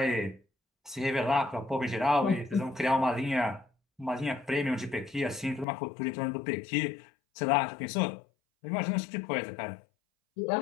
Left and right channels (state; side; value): drops out; right; at 5.7 s